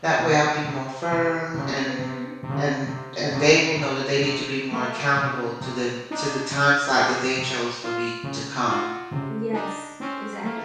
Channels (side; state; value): both; identical; correlation 1.00